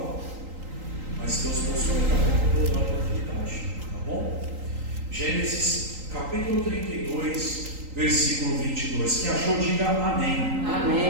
mas Deus mostrou para alguém, eu vou dar a oportunidade, tá bom? Gênesis capítulo 32, versículo 22. Quem achou, diga amém.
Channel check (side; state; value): left; late; 3.8 ms